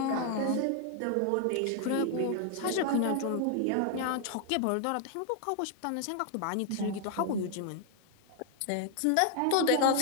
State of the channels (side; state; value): both; different; correlation 0.00